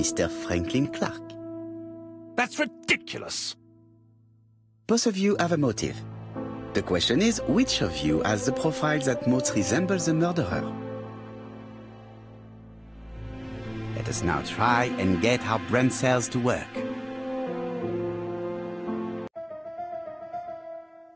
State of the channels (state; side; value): identical; both; correlation 1.00